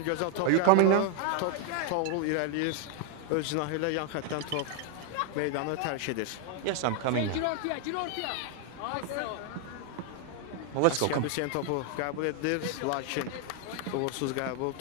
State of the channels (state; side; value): different; both; correlation 0.00